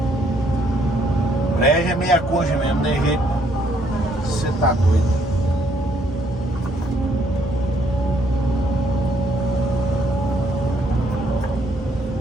Breja é meia coxa mesmo, não tem jeito. Você tá doido.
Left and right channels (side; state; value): both; normal; correlation 0.68